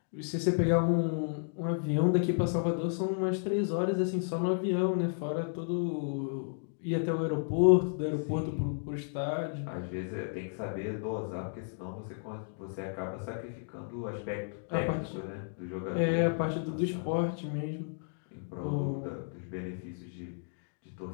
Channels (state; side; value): silent; right; digital silence